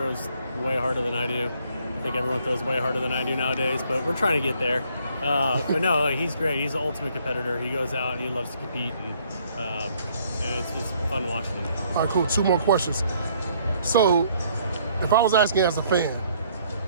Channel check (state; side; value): inverted; both; correlation -0.64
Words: way harder than I do. I think everyone throws way harder than I do nowadays, but we're trying to get there. But no, he's great. He's the ultimate competitor. He goes out and he loves to compete, and it's just fun watching him. All right, cool. Two more questions. So, if I was asking as a fan,